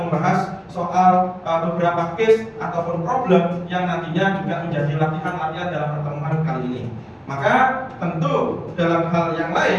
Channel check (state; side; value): identical; both; correlation 1.00